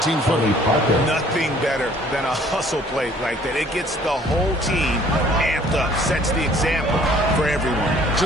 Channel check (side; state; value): both; normal; correlation 0.56